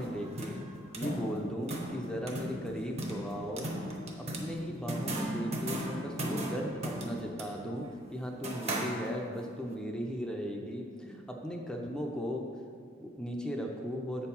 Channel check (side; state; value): both; normal; correlation 0.68